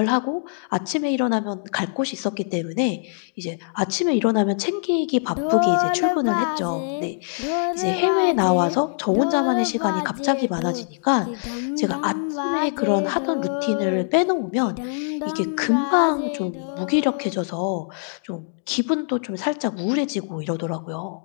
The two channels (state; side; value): silent; right; digital silence